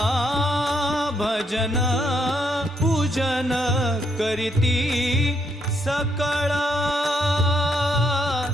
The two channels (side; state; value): both; normal; correlation 0.75